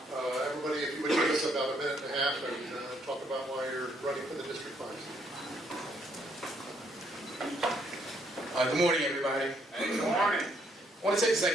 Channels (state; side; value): normal; both; correlation 0.70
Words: everybody, if you would give us about a minute and a half and talk about why you're running for the district finals. Good morning, everybody. Good morning. I want to take a